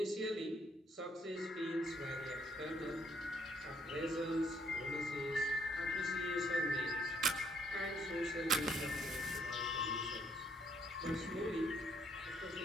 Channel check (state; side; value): normal; both; correlation 0.68